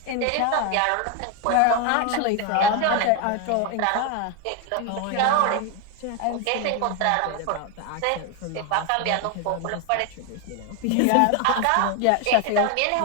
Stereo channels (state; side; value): different; both; correlation 0.01